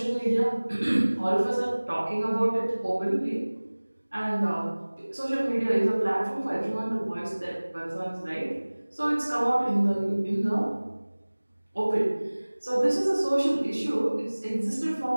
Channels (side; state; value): both; inverted; correlation -1.00